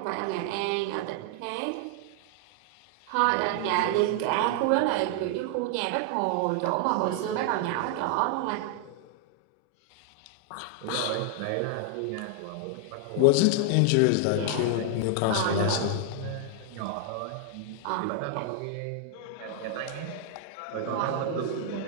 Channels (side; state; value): both; different; correlation 0.00